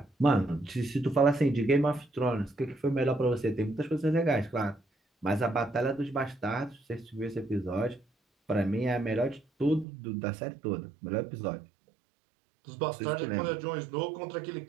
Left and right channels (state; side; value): drops out; left; at 9.9 s